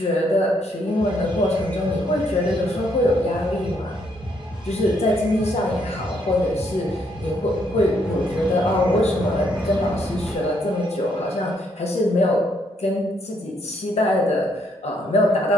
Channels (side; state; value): both; normal; correlation 0.72